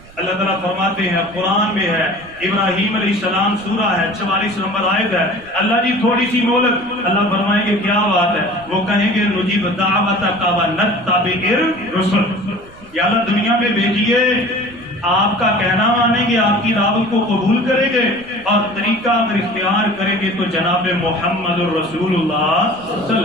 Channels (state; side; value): noise; right; rumble, 23 dB below the sound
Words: اللہ تعالیٰ فرماتے ہیں، قرآن میں ہے، ابراہیم علیہ السلام سورہ ہے، 44 نمبر آیت ہے. اللہ جی تھوڑی سی مہلت. اللہ فرمائیں گے کیا بات ہے؟ وہ کہیں گے نجیب دعوتک ونتبع الرسل، یا اللہ دنیا میں بھیجیے، آپ کا کہنا مانیں گے، آپ کی دعوت کو قبول کریں گے اور طریقہ اگر اختیار کریں گے تو جناب محمد الرسول اللہ صلی اللہ